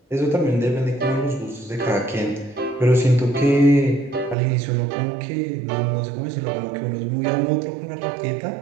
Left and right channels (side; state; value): left; drops out; at 4.4 s